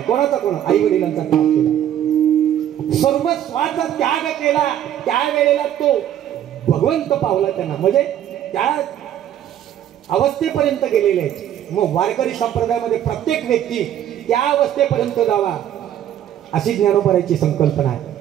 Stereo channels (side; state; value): left; quieter; 10.9 dB